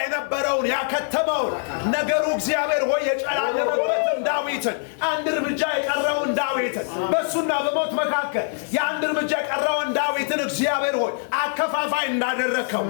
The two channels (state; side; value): silent; right; 56 dB below the other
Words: የነበረውን ያከተመውን ነገሩ እግዚአብሔር ሆይ የጨላለመበትን ዳዊትን አንድ እርምጃ የቀረውን ዳዊትን በሱና በሞት መካከል የአንድ እርምጃ የቀረውን ዳዊትን እግዚአብሔር ሆይ አከፋፋይ እንዳደረከው